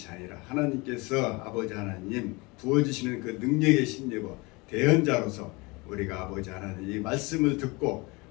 아니라 하나님께서 아버지 하나님 부어주시는 그 능력의 심리고 대언자로서 우리가 아버지 하나님 이 말씀을 듣고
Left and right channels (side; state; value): right; quieter; 25.6 dB